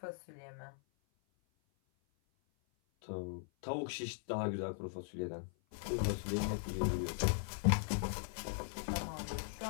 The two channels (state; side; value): silent; right; 51 dB below the other